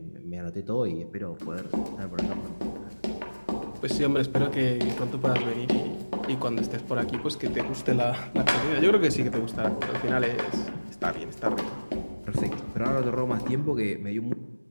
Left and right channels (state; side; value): inverted; both; correlation -1.00